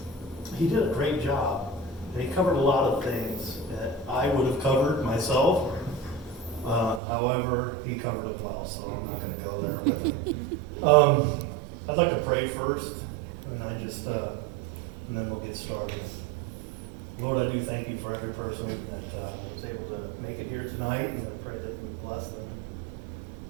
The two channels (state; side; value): drops out; left; at 7.0 s